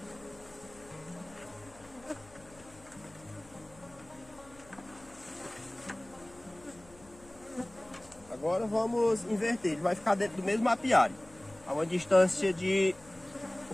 Agora vamos inverter, ele vai ficar dentro do mesmo apiário, a uma distância de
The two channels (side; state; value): left; noise; hum, 24 dB below the sound